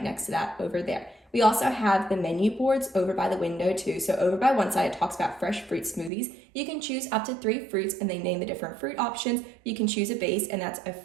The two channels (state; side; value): drops out; left; at 6.1 s